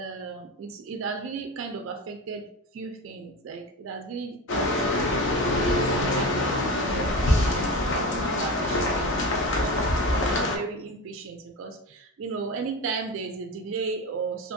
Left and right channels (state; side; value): normal; both; correlation 0.26